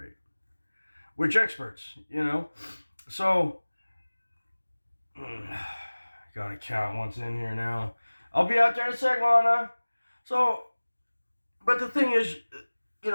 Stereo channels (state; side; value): inverted; both; correlation -1.00